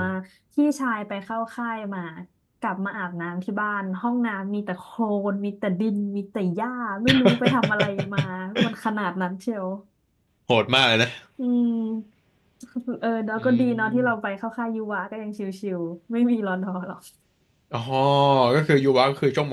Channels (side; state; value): both; identical; correlation 1.00